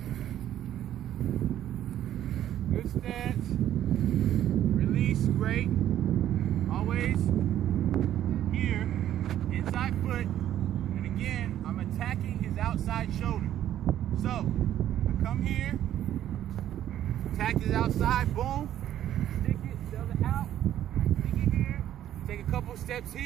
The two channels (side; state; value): left; quieter; 11.7 dB